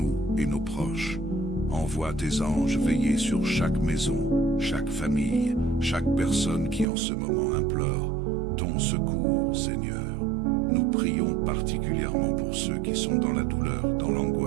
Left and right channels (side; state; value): left; drops out; at 6.9 s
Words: et nos proches. Envoie tes anges veiller sur chaque maison, chaque famille, chaque personne qui en ce moment implore ton secours, Seigneur. Nous prions particulièrement pour ceux qui sont dans la douleur, dans